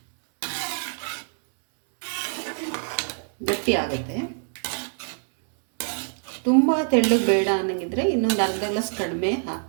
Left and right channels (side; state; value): left; silent; 61 dB below the other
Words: ಗಟ್ಟಿ ಆಗುತ್ತೆ. ತುಂಬ ತೆಳ್ಳಗೆ ಬೇಡ ಅನ್ನಂಗಿದ್ರೆ ಇನ್ನೊಂದು ಅರ್ಧ ಗ್ಲಾಸ್ ಕಡಿಮೆ